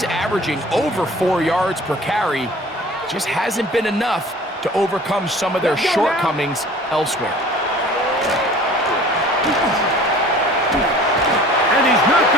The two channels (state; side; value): normal; both; correlation 0.46